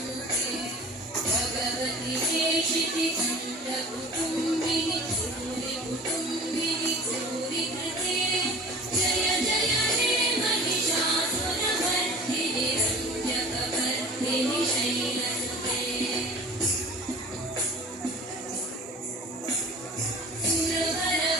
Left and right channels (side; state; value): both; normal; correlation 0.42